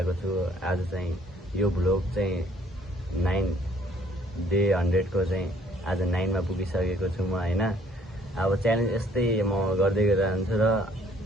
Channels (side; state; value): both; normal; correlation 0.61